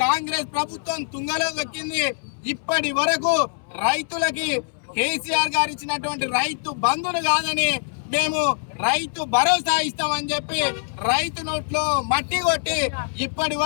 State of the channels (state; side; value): silent; right; 63 dB below the other